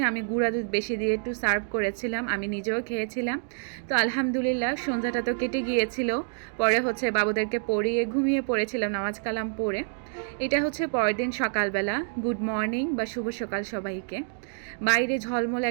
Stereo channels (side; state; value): left; silent; digital silence